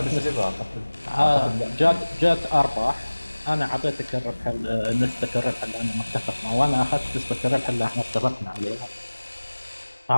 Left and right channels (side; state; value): both; inverted; correlation -1.00